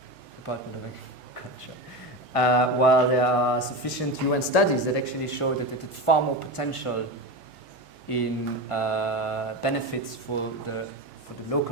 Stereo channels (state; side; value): normal; both; correlation 0.21